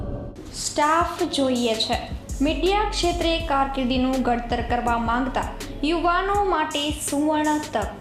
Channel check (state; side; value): identical; both; correlation 1.00